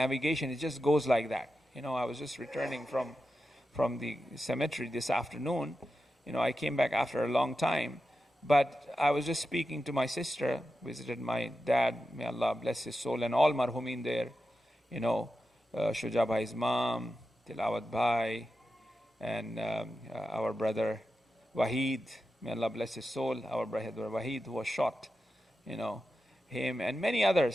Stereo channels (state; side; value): normal; both; correlation 0.90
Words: it just goes like that. I was just returning from the cemetery this afternoon. I came back after a long time, but I was just speaking to my sister, visited my dad, may Allah bless his soul, and all marhumin there, Shuja Bhai's mom, Tilawat Bhai, and our brother Wahid, may Allah bless his soul, our brother Wahid who was shot, him and many